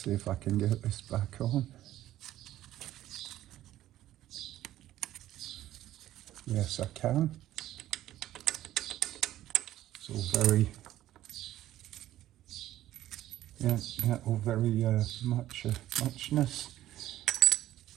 if I can get this back on. Yes, I can. It's all very, yeah, all very muchness.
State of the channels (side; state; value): left; quieter; 13.6 dB